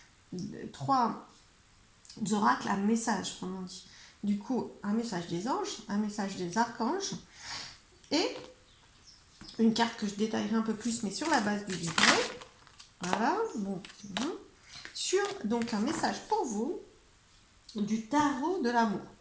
trois oracles à message, comme on dit. Du coup, un message des anges, un message des archanges et une carte que je détaillerai un peu plus, mais sur la base du livret. Voilà, bon, sur donc un message pour vous du tarot de l'amour.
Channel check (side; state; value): both; identical; correlation 1.00